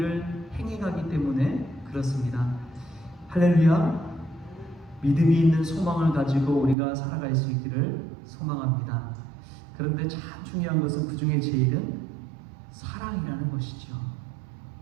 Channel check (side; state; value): left; drops out; at 6.8 s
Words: 행해가기 때문에 그렇습니다. 할렐루야. 믿음이 있는 소망을 가지고 우리가 살아갈 수 있기를 소망합니다. 그런데 참 중요한 것은 그 중에 제일은 사랑이라는 것이죠.